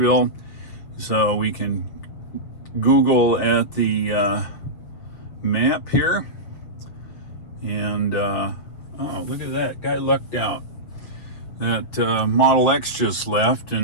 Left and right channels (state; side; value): late; right; 7.3 ms